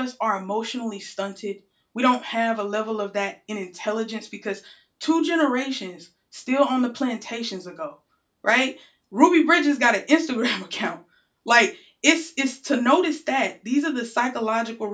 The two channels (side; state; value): both; identical; correlation 1.00